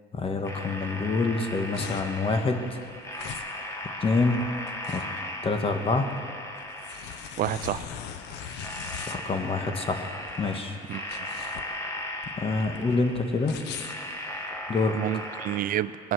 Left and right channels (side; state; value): both; normal; correlation 0.52